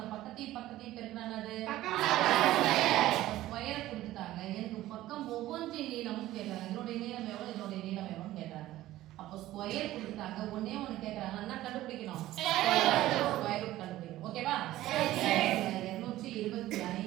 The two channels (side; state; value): left; quieter; 15.3 dB